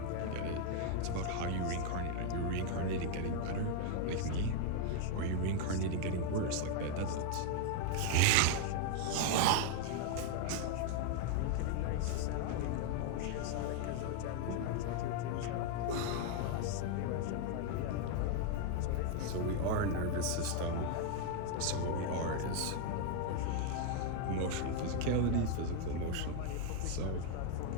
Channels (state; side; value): different; both; correlation 0.00